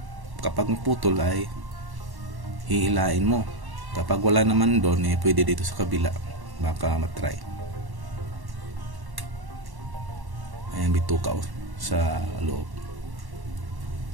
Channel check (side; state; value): left; late; 1.1 ms